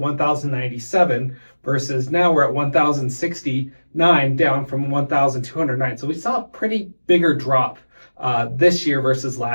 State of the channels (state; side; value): inverted; both; correlation -1.00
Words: versus now we're at 1,069, down from 1,209. So we saw a pretty bigger drop this year versus